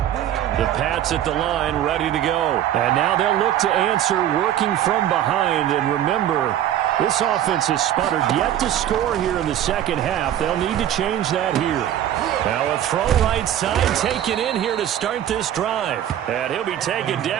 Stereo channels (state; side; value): quieter; left; 11.4 dB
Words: The Pats at the line, ready to go. And now they'll look to answer working from behind. And remember, this offense has sputtered yet to score here in the 2nd half. They'll need to change that here. Now a throw right side taken in here to start this drive. And he'll be taken